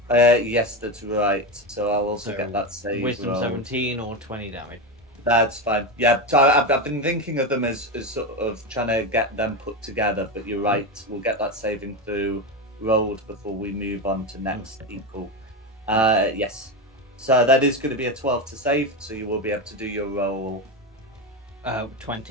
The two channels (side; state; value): both; normal; correlation 0.15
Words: Yes, that's right. So I'll also So, get that save. Wisdom roll. 17 or 20 damage. That's fine. Yeah, so I've been thinking of them as sort of trying to get them put together, but you're right. We'll get that saving through rolled before we move on to next equal. Yes. So that is going to be a 12 to save, so you will be able to do your roll.